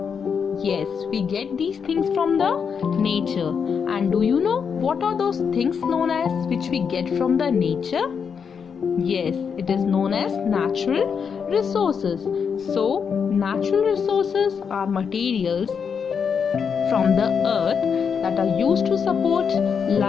Yes, we get these things from the nature. And do you know what are those things known as which we get from the nature? Yes, it is known as natural resources. So, natural resources are materials from the earth that are used to support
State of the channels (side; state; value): right; quieter; 6.5 dB